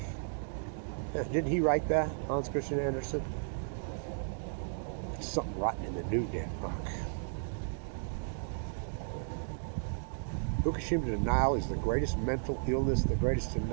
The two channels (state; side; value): silent; left; digital silence